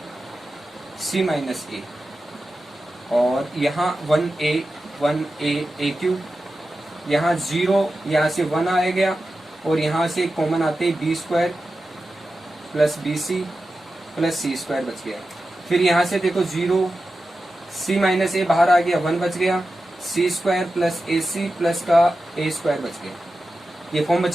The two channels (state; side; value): normal; both; correlation 0.92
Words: सी माइनस ए, और यहाँ 1 ए क्यूब, यहाँ 0, यहाँ से 1 आ गया, और यहाँ से कॉमन आते B square plus B C plus सी स्क्वायर बच गया। फिर यहाँ से देखो 0 सी माइनस ए बाहर आ गया, 1 बच गया, सी square plus A C plus का ए स्क्वायर बच गया। ये फॉर्म